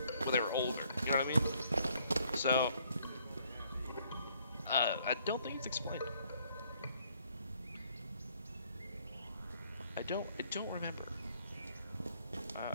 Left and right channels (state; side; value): inverted; both; correlation -0.65